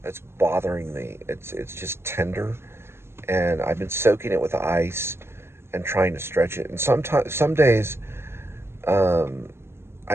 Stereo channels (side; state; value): left; late; 0.12 ms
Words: that's bothering me. It's just tender, and I've been soaking it with ice and trying to stretch it. And some days, um, I